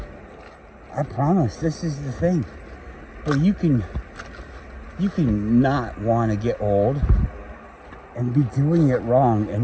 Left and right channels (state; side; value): identical; both; correlation 1.00